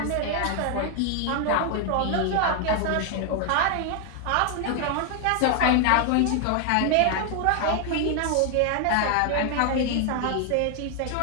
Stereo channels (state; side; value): different; both; correlation 0.00